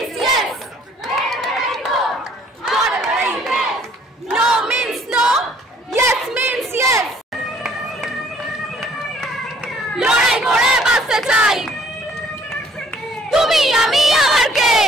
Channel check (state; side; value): normal; both; correlation 0.59